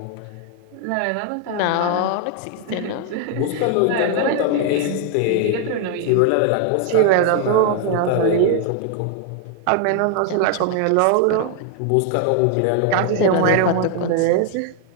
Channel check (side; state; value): both; different; correlation 0.00